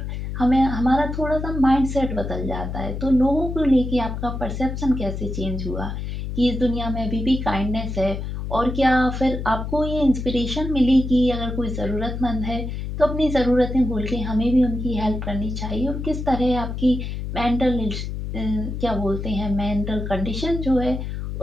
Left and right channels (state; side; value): noise; left; hum, 5 dB below the sound